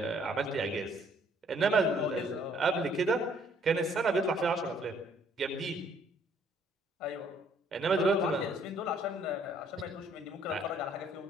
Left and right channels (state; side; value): normal; both; correlation 0.63